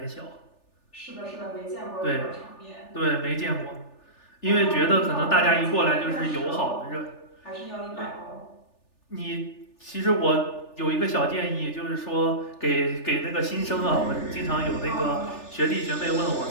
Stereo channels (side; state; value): right; late; 3.4 ms